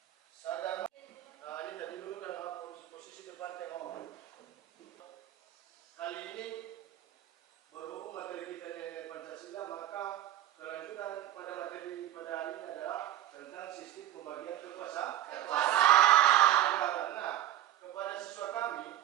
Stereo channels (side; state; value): left; quieter; 12.8 dB